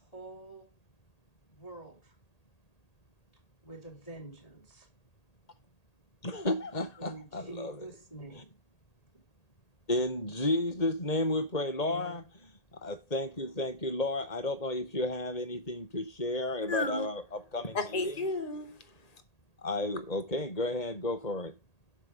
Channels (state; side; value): late; right; 1.8 ms